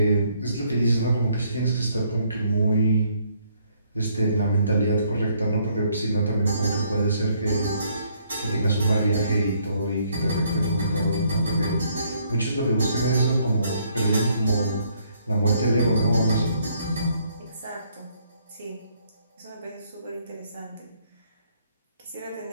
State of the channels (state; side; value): inverted; both; correlation -0.68